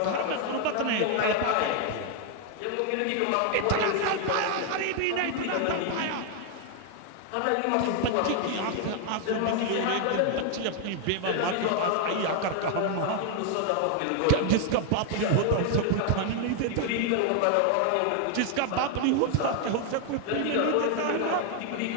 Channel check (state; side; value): different; both; correlation 0.00